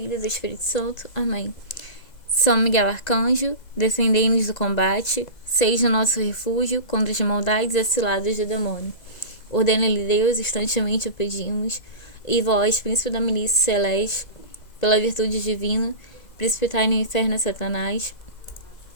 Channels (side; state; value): right; late; 2.0 ms